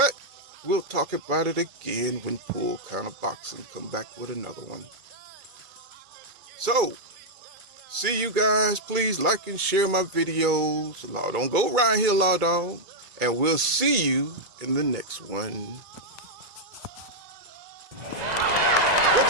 we'll talk about it again when Pull Kind of Boxing come back with another one. So, see you guys. Please like and share my videos. Law, don't go around here, law dog. And we'll see you in the next one.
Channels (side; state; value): left; late; 2.3 ms